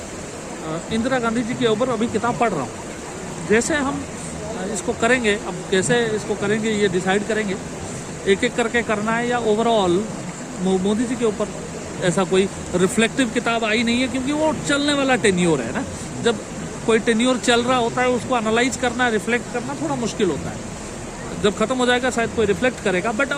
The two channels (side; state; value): both; identical; correlation 1.00